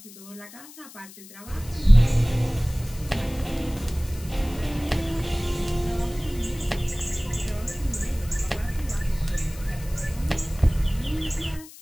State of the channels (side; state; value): left; noise; hiss, 18 dB below the sound